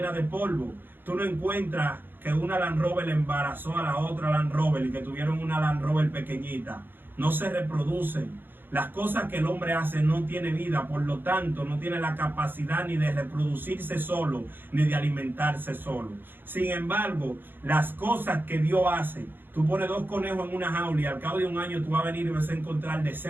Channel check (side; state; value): left; late; 0.097 ms